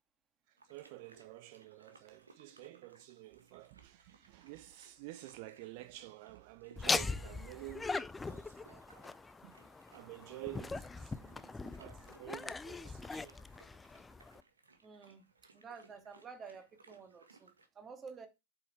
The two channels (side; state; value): both; normal; correlation 0.77